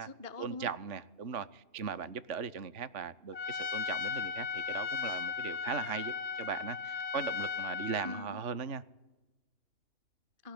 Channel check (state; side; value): late; left; 2.8 ms